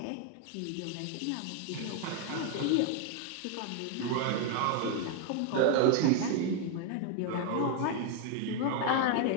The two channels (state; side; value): different; both; correlation 0.01